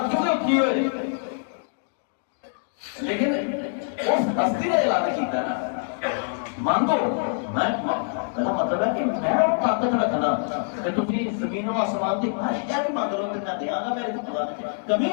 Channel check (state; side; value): silent; right; digital silence